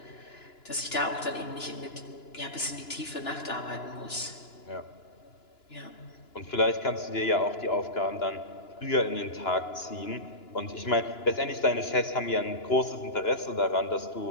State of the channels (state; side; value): late; right; 2.9 ms